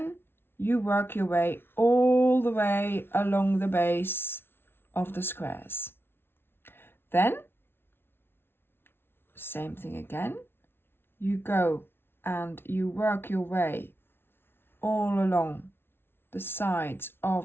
you work your way all the way along the base of the squares. Then same thing again, you go and you work your way all along the sides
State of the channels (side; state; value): right; late; 0.11 ms